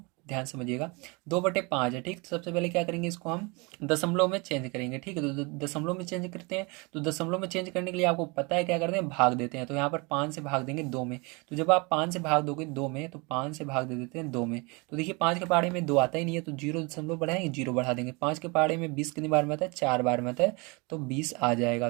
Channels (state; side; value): quieter; left; 28.7 dB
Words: ध्यान समझिएगा। 2/5 है, ठीक, तो सबसे पहले क्या करेंगे, इसको हम दशमलव में चेंज करेंगे। ठीक है, तो दशमलव में चेंज करते हैं। तो दशमलव में चेंज करने के लिए आपको पता है क्या करते हैं, भाग देते हैं। तो यहाँ पर 5 से भाग देंगे 2 में, तो जब आप 5 से भाग दोगे 2 में, तो 5 से भाग दे देते हैं 2 में। तो देखिए 5 के पहाड़े में 2 आता ही नहीं है, तो 0 दशमलव बढ़ाएंगे, 0 बढ़ा देंगे। 5 के पहाड़े में 20 कितनी बार में आता है, 4 बार में आता है, तो 20 आ जाएगा।